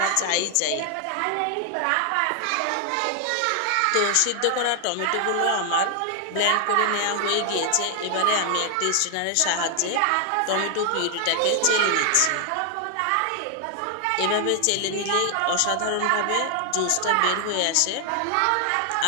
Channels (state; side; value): different; both; correlation 0.00